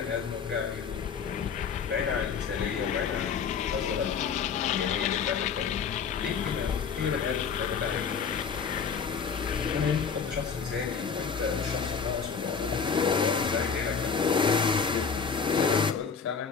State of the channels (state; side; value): quieter; right; 6.2 dB